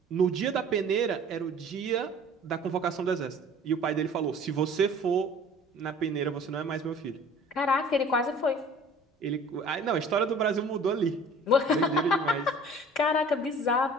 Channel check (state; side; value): normal; both; correlation 0.47